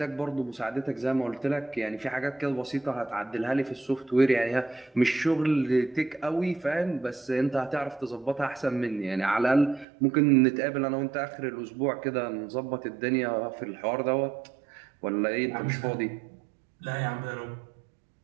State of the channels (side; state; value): left; drops out; at 9.9 s